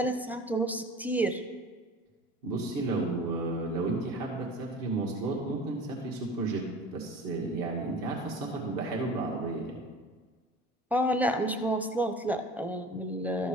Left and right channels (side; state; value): both; normal; correlation 0.41